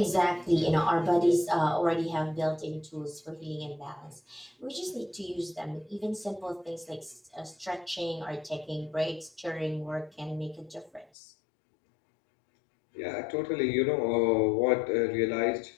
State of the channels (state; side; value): drops out; right; at 11.1 s